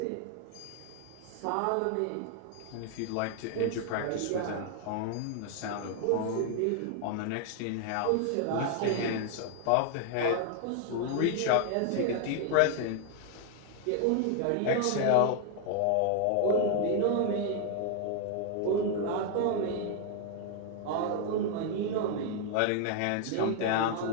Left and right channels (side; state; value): both; different; correlation 0.00